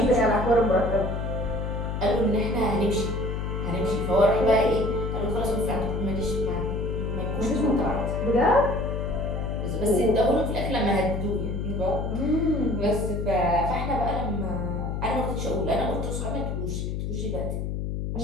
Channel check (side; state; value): left; noise; hum, 2 dB below the sound